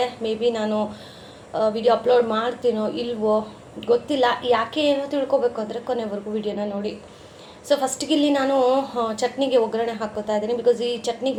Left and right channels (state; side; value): identical; both; correlation 1.00